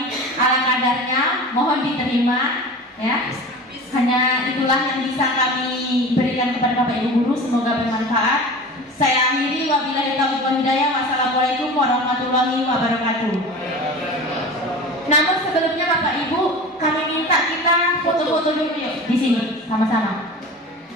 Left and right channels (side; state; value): both; normal; correlation 0.35